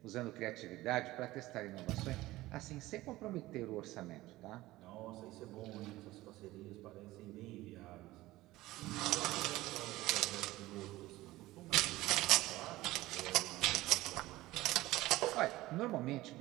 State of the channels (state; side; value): quieter; left; 17.7 dB